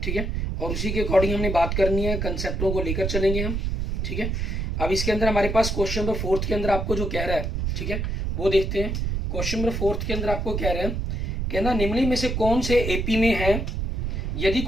ठीक है, और उसी के अकॉर्डिंग हमने बात करनी है, कंसेप्टों को लेकर चलेंगे हम। ठीक है, अब इसके अंदर हमारे पास क्वेश्चन नंबर 4 के अंदर आपको जो कह रहा है, ठीक है, वो देखते हैं। क्वेश्चन नंबर 4 के अंदर आपको कह रहे हैं, कहना निम्नलिखित में से कौन से एपी में है, यदि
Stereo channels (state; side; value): noise; right; rumble, 1 dB below the sound